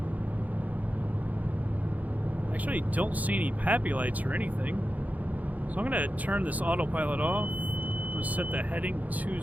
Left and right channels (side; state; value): left; late; 0.077 ms